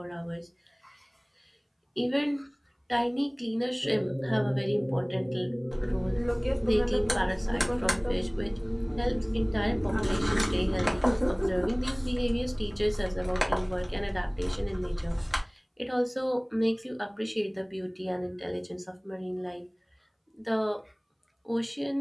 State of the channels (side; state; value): both; identical; correlation 1.00